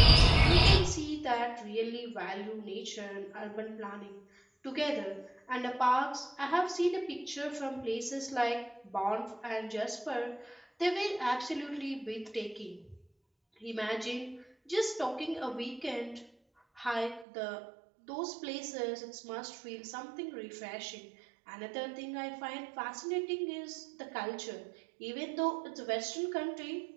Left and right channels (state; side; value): drops out; left; at 17.2 s